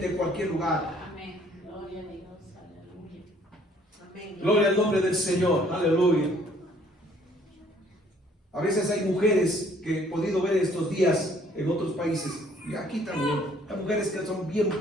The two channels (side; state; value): both; normal; correlation 0.61